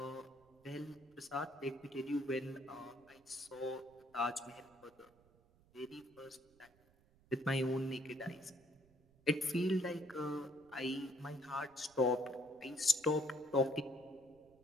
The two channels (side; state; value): right; noise; rumble, 29 dB below the sound